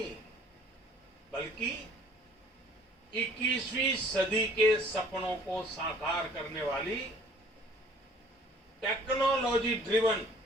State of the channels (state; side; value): normal; both; correlation 0.54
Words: बल्कि 21वीं सदी के सपनों को साकार करने वाली टेक्नोलॉजी ड्रिवन